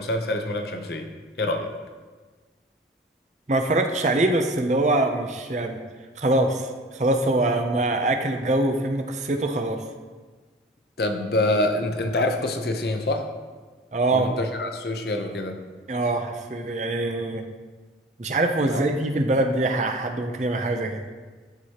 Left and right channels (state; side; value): normal; both; correlation 0.37